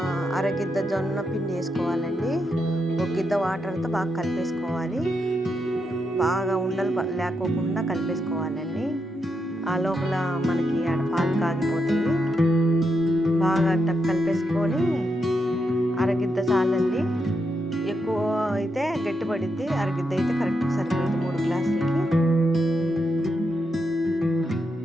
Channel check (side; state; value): both; normal; correlation 0.83